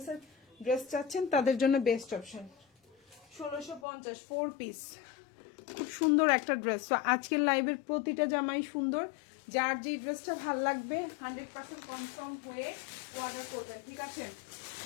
ড্রেস চাচ্ছেন তাদের জন্য বেস্ট অপশন। 1650, 4 পিস, খুব সুন্দর একটা ড্রেস। তো আজকের লাইভের প্রতিটা জামাই সুন্দর। যার যে ড্রেসটা ভাল লাগবে 100% কনফার্ম হয়ে অর্ডার করবেন, ঠিক আছে?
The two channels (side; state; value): right; drops out; at 3.8 s